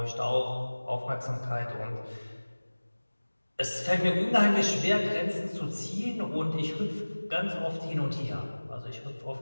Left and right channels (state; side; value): inverted; both; correlation -1.00